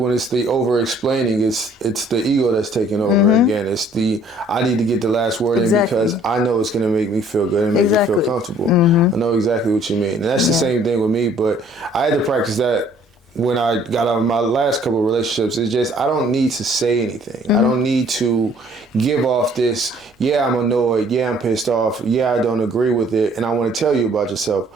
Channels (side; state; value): both; normal; correlation 0.58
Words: it's the over-explaining, it's the ego that's taking over again. It's the, I need to get the last word in because I know it's going to make me feel good and make me feel comfortable. I know exactly what you mean. And that's the same thing with me, but I had to practice that when I got out of my last couple of relationships. It's just, I don't need to say anything. I don't need to give off this, I'm annoyed, I'm pissed off, I don't agree with it, and I want to tell you about yourself.